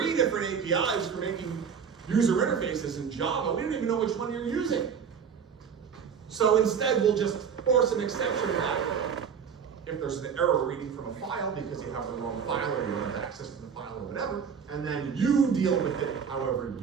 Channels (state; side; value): quieter; left; 6.9 dB